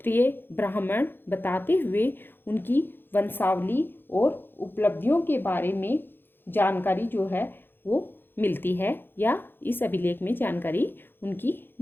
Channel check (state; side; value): late; right; 0.10 ms